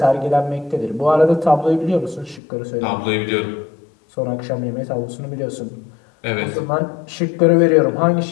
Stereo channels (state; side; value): drops out; right; at 2.4 s